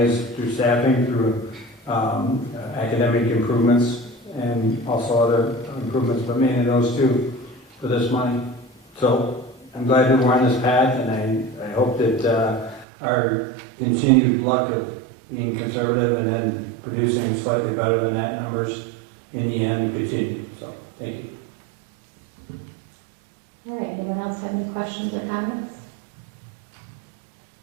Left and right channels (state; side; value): drops out; left; at 12.9 s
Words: through staffing, through academic improvements, and also other improvements, but mainly those two for this money. So I'm glad that we're on this path, and I hope that our continued luck of being conservative and then producing slightly better than that numbers in the end continue. So, thank you. All right, anyone else have any questions or comments?